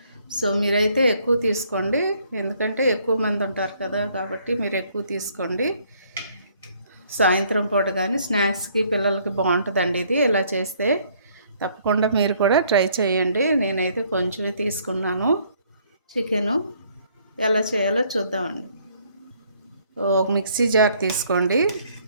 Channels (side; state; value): both; inverted; correlation -0.64